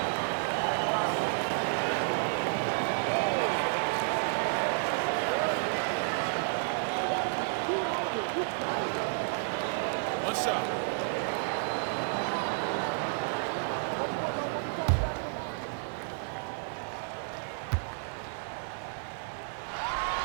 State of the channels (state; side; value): silent; left; digital silence